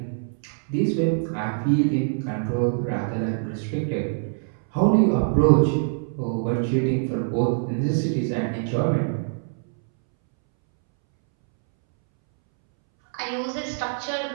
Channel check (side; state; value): left; silent; 62 dB below the other